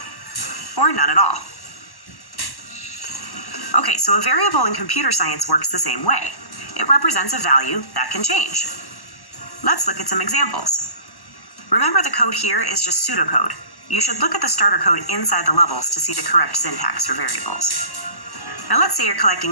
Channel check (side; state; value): right; late; 1.1 ms